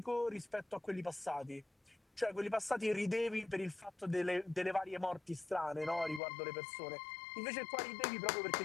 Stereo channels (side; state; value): right; drops out; at 6.2 s